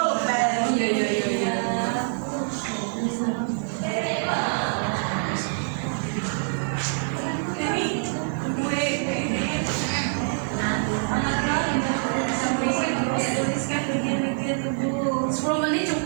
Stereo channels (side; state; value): left; silent; 62 dB below the other